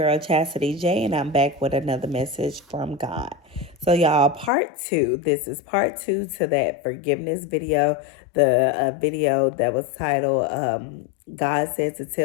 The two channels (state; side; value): drops out; right; at 4.5 s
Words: Chastity J, and I'm back with another message from God. So, y'all, part two. This is part two to that forgiveness video, the video that was titled God Said to